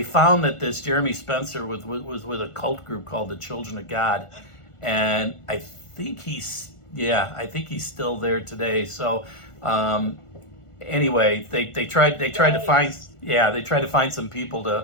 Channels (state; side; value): late; right; 1.5 ms